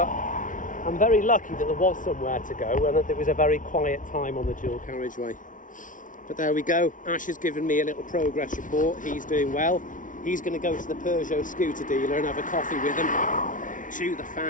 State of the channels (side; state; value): right; late; 0.38 ms